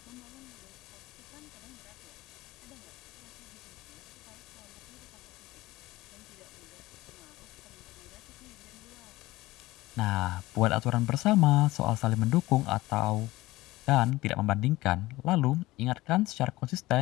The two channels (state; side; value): quieter; right; 18.7 dB